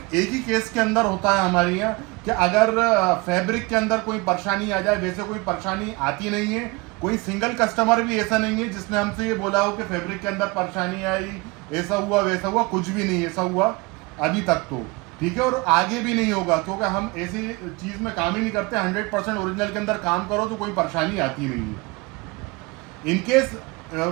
एक ही केस के अंदर होता है हमारे यहाँ कि अगर फैब्रिक के अंदर कोई परेशानी आ जाए। वैसे कोई परेशानी आती नहीं है। कोई सिंगल कस्टमर भी ऐसा नहीं है जिसने हमसे ये बोला हो कि फैब्रिक के अंदर परेशानी आई, ऐसा हुआ वैसा हुआ। कुछ भी नहीं ऐसा हुआ अभी तक तो, ठीक है, और आगे भी नहीं होगा, क्योंकि हम ऐसी चीज़ में काम ही नहीं करते। 100% ओरिजिनल के अंदर काम करो तो कोई परेशानी आती नहीं है। इनकेस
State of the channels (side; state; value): left; quieter; 25.4 dB